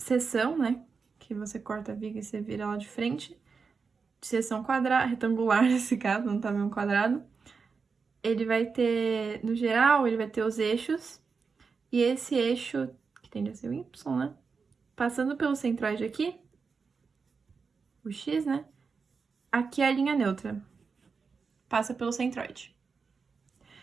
né? Que você corta a viga e você vira ela de frente. De seção quadrada, retangular nesse caso, não tá bem um quadrado. Ele vai ter, no geral, ele vai ter os eixos. E esse eixo, que tende a ser o Y, né? Passando pelo centroide aqui, o X, né? Aqui é a linha neutra. Passa pelo centroide.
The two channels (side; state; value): left; quieter; 5.1 dB